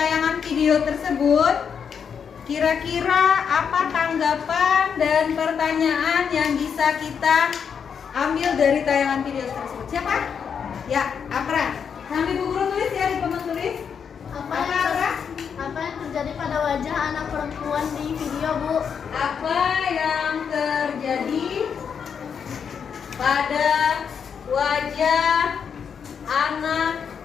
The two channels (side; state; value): right; quieter; 7.0 dB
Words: video tersebut, kira-kira apa tanggapan dan pertanyaan yang bisa kita ambil dari tayangan video tersebut? Siapa? Ya, Apra. Sambil Bu Guru tulis ya di papan tulis. Apa Apra? apa yang terjadi pada wajah anak perempuan di video, Bu? Apa yang terjadi pada wajah anak